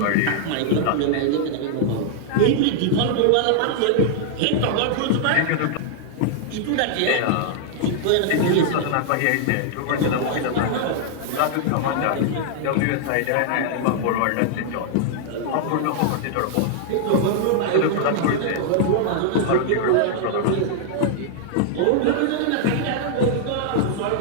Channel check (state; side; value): different; both; correlation -0.01